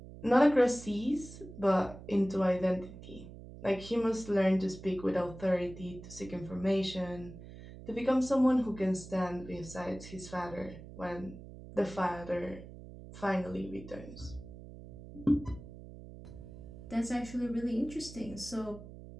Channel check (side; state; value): right; noise; hum, 15 dB below the sound